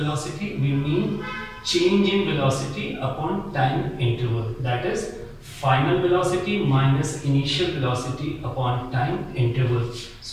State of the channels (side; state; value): both; identical; correlation 1.00